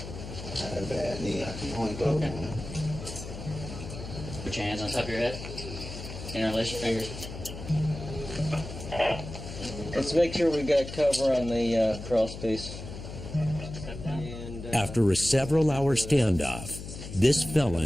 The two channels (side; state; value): left; noise; hum, 10 dB below the sound